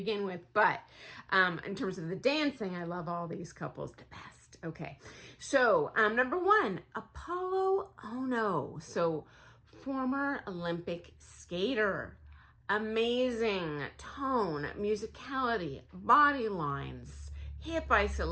with. But in terms of the dancing, I love all these couples the best. Okay. So number 1, Apollo Ono. So former Olympic skater. Amazing tone, musicality, body lines, hip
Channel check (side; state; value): both; identical; correlation 1.00